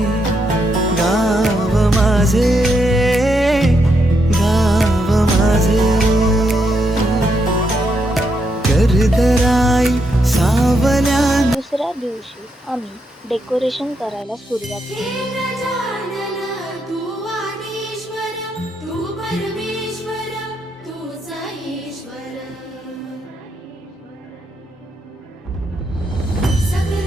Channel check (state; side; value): normal; both; correlation 0.80